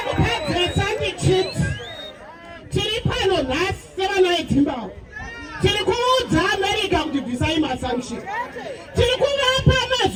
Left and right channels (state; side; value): identical; both; correlation 1.00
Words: kupedzesa ndichiti tiri pano nhasi sevana veZimbabwe tiri kuudza America kuti bvisai masanction, tiri kuvapa